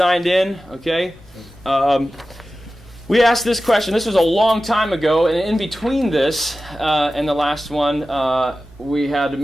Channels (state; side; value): normal; both; correlation 0.94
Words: in, okay? We asked this question. This was a long time ago, and in between this and the last one, we had